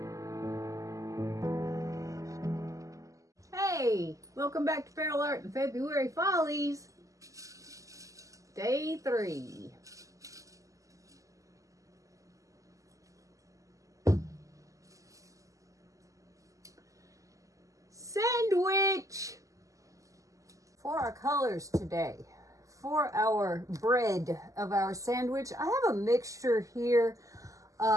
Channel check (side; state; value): left; late; 0.16 ms